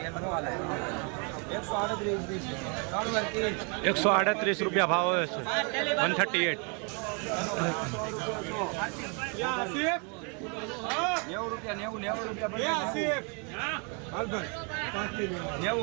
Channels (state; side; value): quieter; left; 35.4 dB